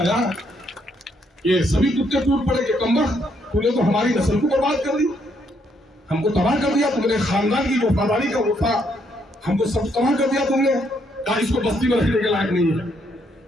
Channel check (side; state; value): both; normal; correlation 0.73